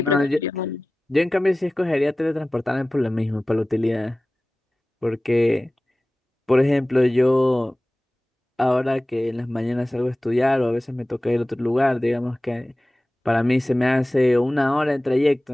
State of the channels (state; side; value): normal; both; correlation 0.97